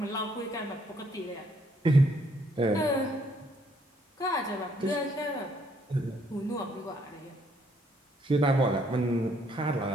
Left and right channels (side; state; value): both; normal; correlation 0.68